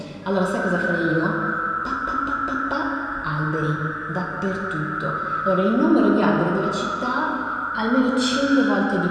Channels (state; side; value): identical; both; correlation 1.00